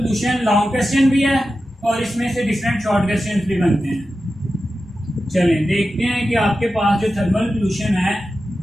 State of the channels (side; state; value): both; normal; correlation 0.92